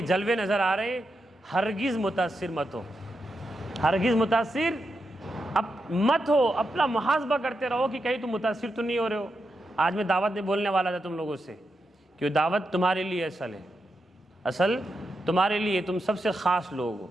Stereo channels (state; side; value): normal; both; correlation 0.86